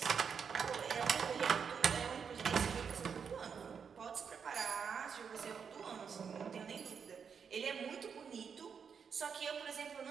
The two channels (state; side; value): quieter; left; 6.6 dB